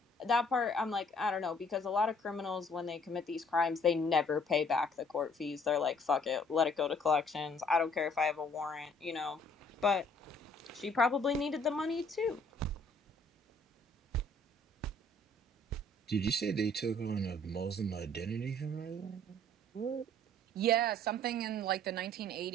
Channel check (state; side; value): normal; both; correlation 0.59